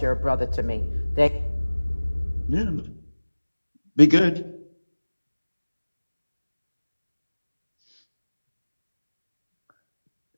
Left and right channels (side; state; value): both; inverted; correlation -1.00